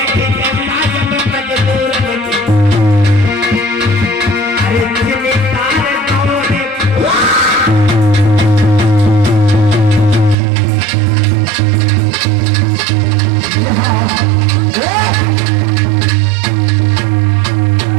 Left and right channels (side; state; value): left; drops out; at 10.4 s